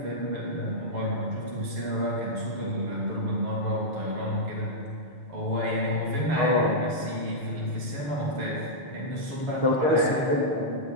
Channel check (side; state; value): left; late; 6.4 ms